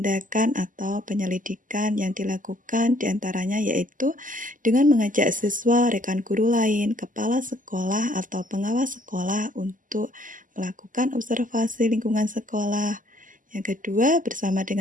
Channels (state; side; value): late; left; 0.38 ms